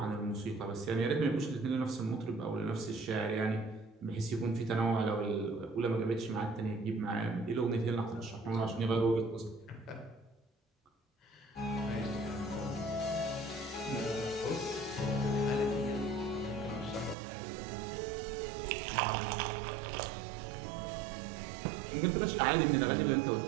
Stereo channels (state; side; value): drops out; left; at 17.2 s